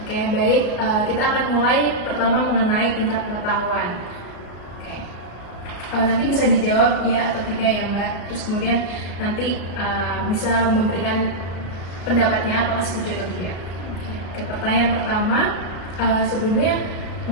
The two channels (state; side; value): late; right; 33 ms